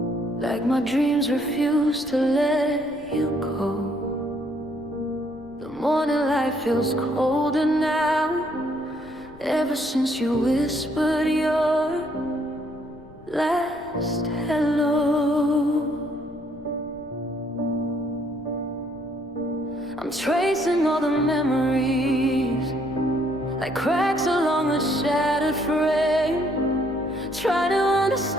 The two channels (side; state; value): left; noise; rumble, 23 dB below the sound